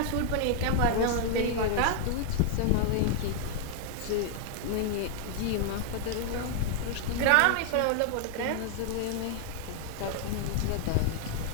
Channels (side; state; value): both; different; correlation 0.00